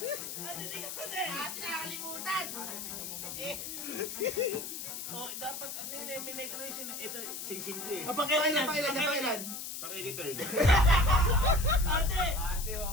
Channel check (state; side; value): noise; left; hiss, 7 dB below the sound